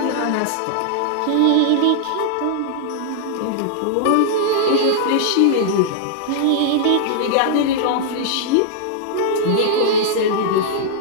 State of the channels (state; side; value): different; both; correlation -0.01